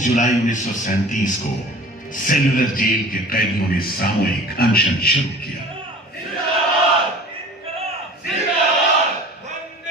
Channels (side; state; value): both; normal; correlation 0.43